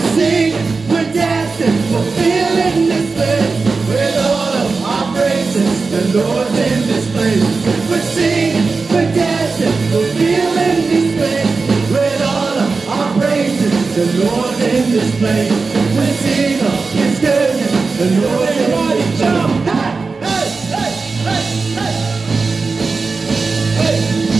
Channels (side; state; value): left; quieter; 4.3 dB